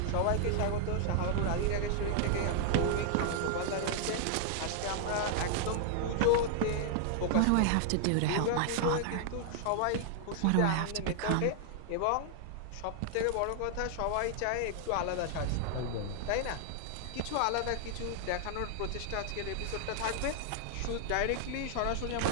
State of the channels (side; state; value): both; different; correlation 0.00